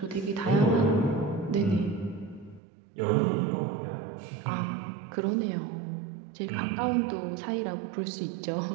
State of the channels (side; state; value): left; drops out; at 2.6 s